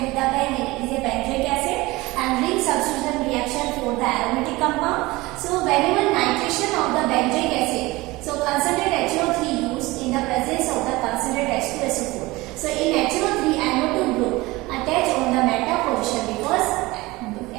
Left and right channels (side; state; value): left; quieter; 21.0 dB